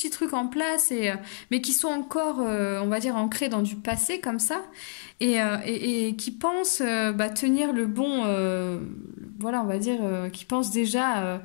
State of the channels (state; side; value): silent; right; digital silence